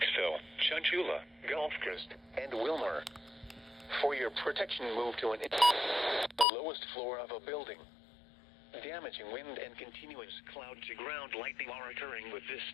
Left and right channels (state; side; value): drops out; right; at 6.5 s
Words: Chunchula, Gulfcrest, and Wilmer. For your protection, move to the lowest floor of a building. Damaging wind and continuous cloud-to-ground lightning are occurring with this